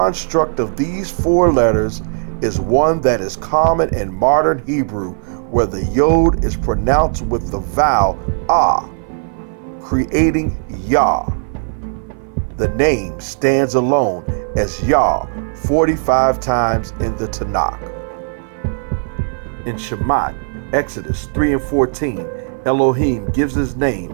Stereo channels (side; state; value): left; silent; 55 dB below the other